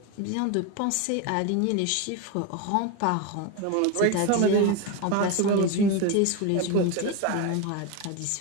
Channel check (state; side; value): different; both; correlation 0.02